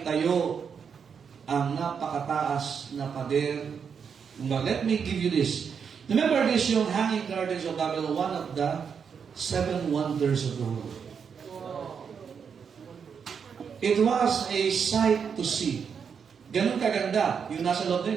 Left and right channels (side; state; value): left; quieter; 6.7 dB